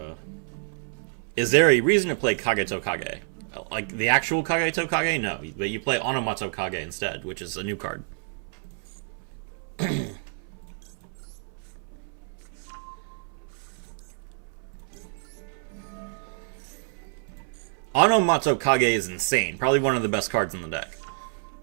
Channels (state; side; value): silent; left; 60 dB below the other